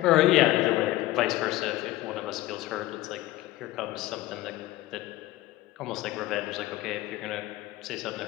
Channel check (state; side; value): quieter; right; 16.8 dB